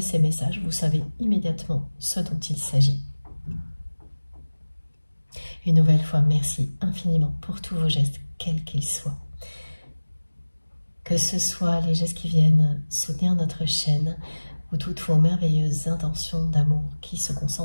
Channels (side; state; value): both; inverted; correlation -1.00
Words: ces messages, vous savez immédiatement ce dont il s'agit. Une nouvelle fois, merci infiniment pour tous vos gestes, quels qu'ils soient. Que ce soit les gestes qui viennent soutenir notre chaîne ou toutes vos merveilleuses intentions d'amour qui se